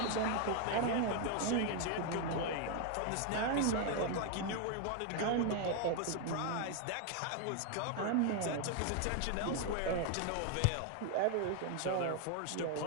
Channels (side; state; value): both; different; correlation 0.01